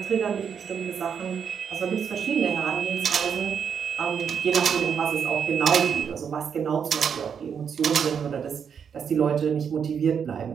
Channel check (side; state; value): left; quieter; 7.2 dB